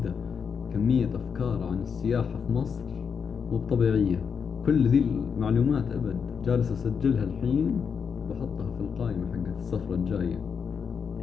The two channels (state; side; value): quieter; right; 6.5 dB